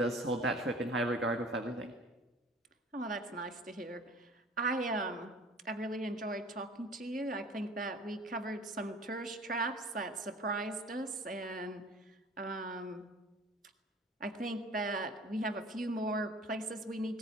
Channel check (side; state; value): both; normal; correlation 0.46